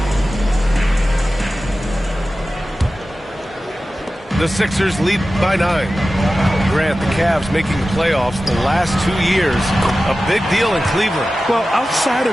The Sixers lead by 9. Grant, the Cavs making the playoffs the last 2 years. A big deal in Cleveland. Well, outside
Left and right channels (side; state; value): both; normal; correlation 0.95